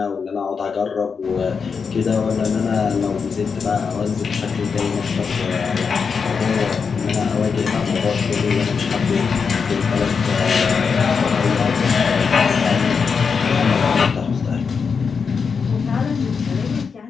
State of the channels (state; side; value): quieter; right; 5.7 dB